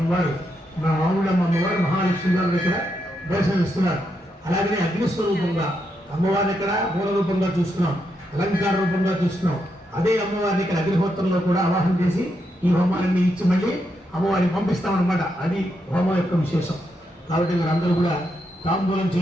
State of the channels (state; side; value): normal; both; correlation 0.81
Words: మా మామూలమ్మ అమ్మవారు మహాలక్ష్మి గారు ఇక్కడ దర్శనమిస్తున్నారు. అలాగనే అగ్నిస్వరూపంగా అమ్మవారిని ఇక్కడ మూల రూపంగా చూస్తున్నాం, అలంకార రూపంగా చూస్తున్నాం. అదే అమ్మవారిని ఇక్కడ అగ్నిహోత్రంలో కూడా ఆవాహన చేసి ఈ హోమాన్ని ఇచ్చి మళ్ళీ అమ్మవారిని పంపిస్తామన్నమాట. అది హోమం యొక్క విశేషం. కాబట్టి మీరందరూ కూడా తాంబూలం